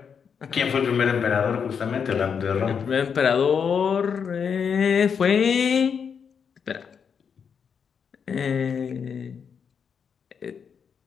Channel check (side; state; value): right; quieter; 6.7 dB